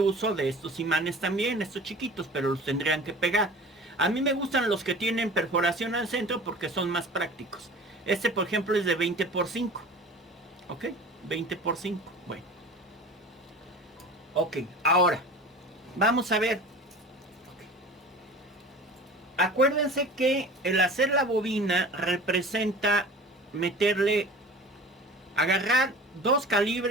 de estos imanes también, estos chiquitos, pero los tendrían que pegar. A mí me gustan los que tienen perforación al centro porque son más prácticos. Este, por ejemplo, es de 20 por 5. ¿Ok? 20 por 5. Bueno. Ok, ahora vamos a ver. Acuérdense que el hacer la bobina representa meterle, agarrar 2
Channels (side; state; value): both; normal; correlation 0.39